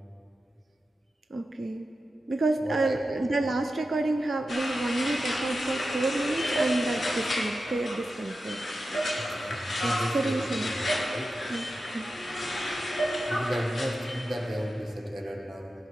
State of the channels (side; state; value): both; normal; correlation 0.91